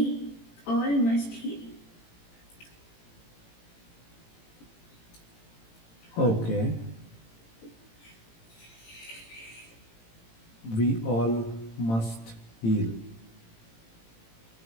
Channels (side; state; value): right; late; 18 ms